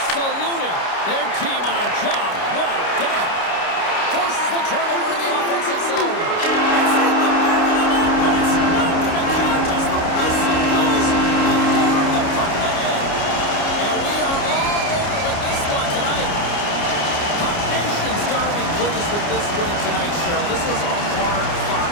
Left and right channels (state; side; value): late; right; 29 ms